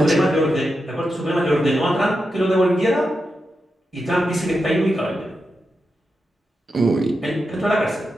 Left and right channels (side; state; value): both; normal; correlation 0.88